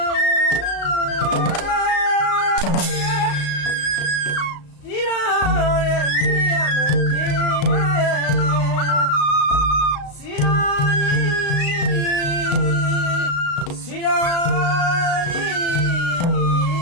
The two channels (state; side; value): late; right; 35 ms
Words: ဒီတော့တဲ့မြည်ရမယ်စီရောစီရော